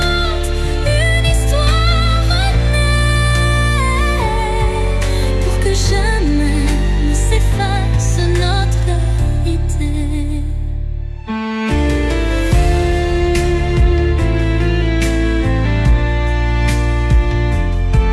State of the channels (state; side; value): identical; both; correlation 1.00